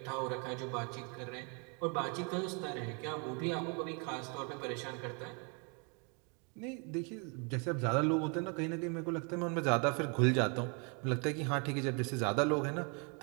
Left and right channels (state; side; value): quieter; left; 35.4 dB